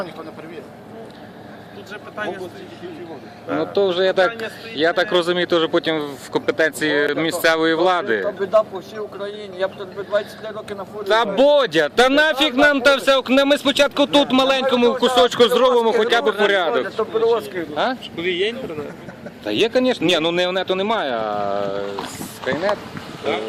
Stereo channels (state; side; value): identical; both; correlation 1.00